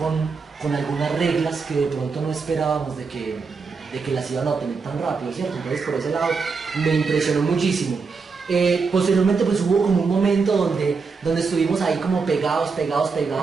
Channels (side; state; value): left; quieter; 4.9 dB